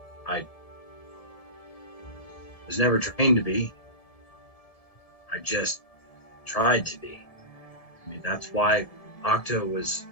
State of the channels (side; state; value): right; late; 1.7 ms